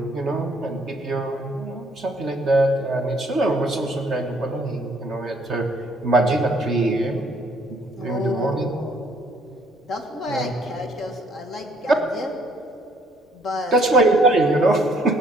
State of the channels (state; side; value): normal; both; correlation 0.64